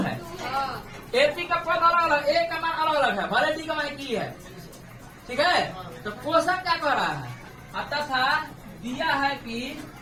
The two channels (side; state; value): both; identical; correlation 1.00